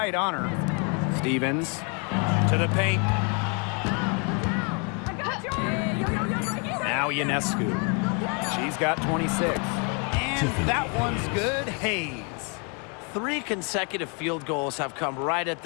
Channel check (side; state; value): right; quieter; 35.7 dB